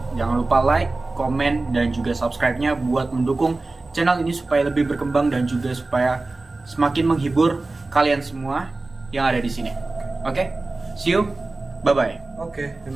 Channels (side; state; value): left; quieter; 3.3 dB